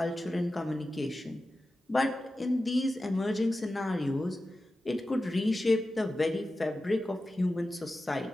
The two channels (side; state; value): both; normal; correlation 0.93